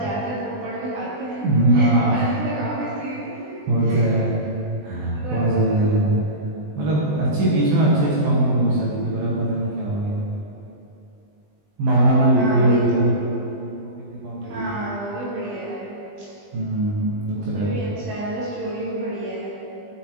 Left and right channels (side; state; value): left; late; 20 ms